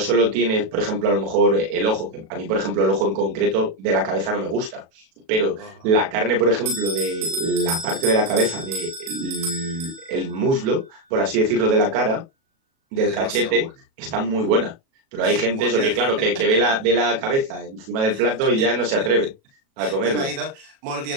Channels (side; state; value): left; late; 37 ms